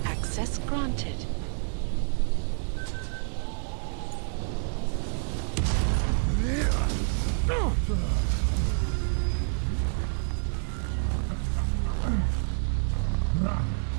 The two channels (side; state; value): left; silent; 59 dB below the other